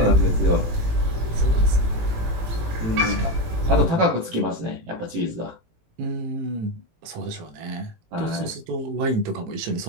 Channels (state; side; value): late; left; 18 ms